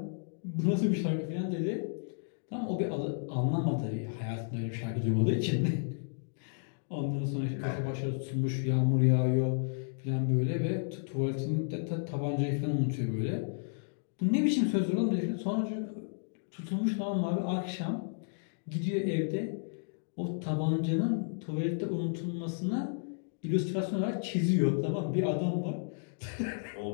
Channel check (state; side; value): silent; right; digital silence